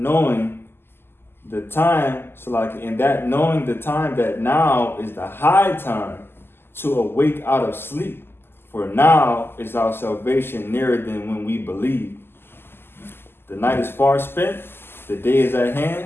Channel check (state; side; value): late; right; 0.11 ms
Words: the time that now is the high time to awake out of sleep. For now is our salvation nearer than when we believe. The night is far spent, the day is at hand.